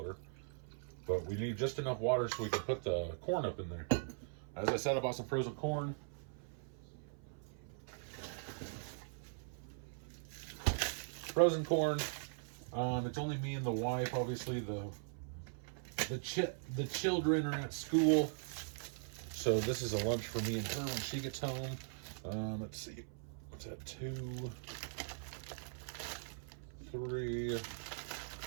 But we need just enough water so we can put the corn up in there. As I said, I bought some frozen corn. Frozen corn. It's only me and the wife. Obviously, the children are at school, so this is a lunch for me and her when she gets home. Let's see, what's that? 2, 3. Let's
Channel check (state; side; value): silent; left; 51 dB below the other